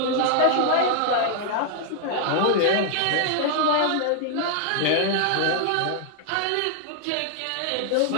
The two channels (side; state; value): both; different; correlation 0.00